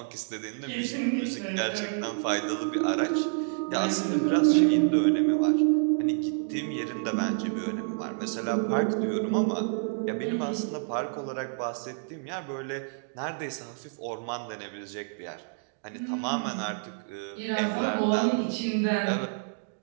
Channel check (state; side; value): silent; left; digital silence